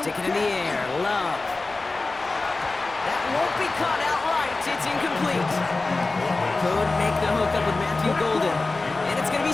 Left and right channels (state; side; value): quieter; right; 3.4 dB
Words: it in the air. Love. That won't be caught outright. It's incomplete. Could make the hook up with Matthew Golden. And it's going to